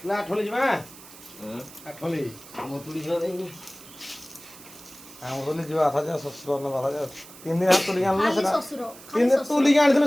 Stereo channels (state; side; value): noise; right; hiss, 19 dB below the sound